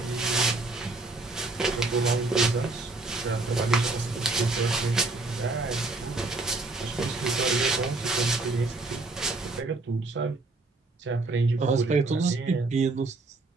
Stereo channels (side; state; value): left; quieter; 3.3 dB